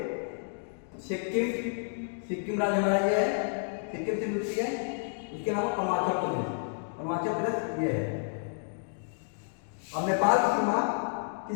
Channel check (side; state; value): right; silent; digital silence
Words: सिक्किम राज्य हमारा ये है, सिक्किम से मिलती है। इसके अलावा अरुणाचल प्रदेश ये है। और नेपाल की सीमा